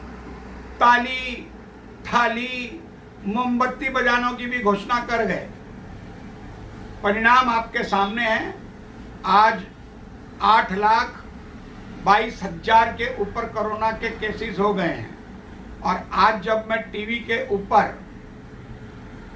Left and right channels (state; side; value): identical; both; correlation 1.00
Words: ताली थाली मोमबत्ती बजानों की भी घोषणा कर गए। परिणाम आपके सामने है। आज 8,22,000 के ऊपर कोरोना के केसेस हो गए हैं। और आज जब मैं टीवी के ऊपर